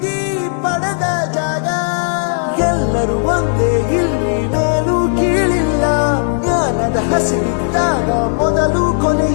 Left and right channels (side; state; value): right; silent; 61 dB below the other